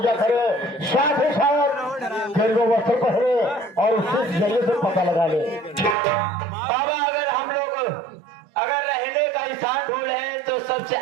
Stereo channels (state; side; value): drops out; left; at 6.0 s